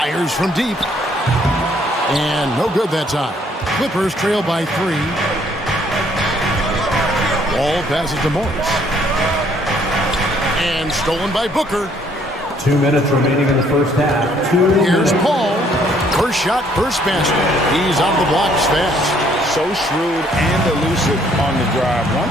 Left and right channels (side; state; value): both; normal; correlation 0.65